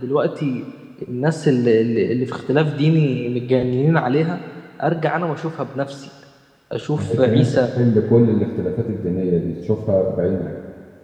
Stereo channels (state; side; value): identical; both; correlation 1.00